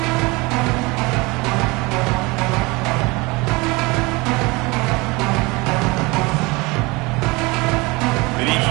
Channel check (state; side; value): quieter; left; 24.7 dB